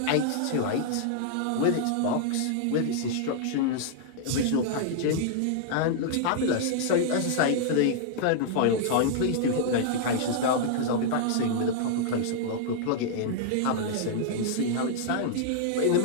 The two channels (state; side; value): different; both; correlation -0.01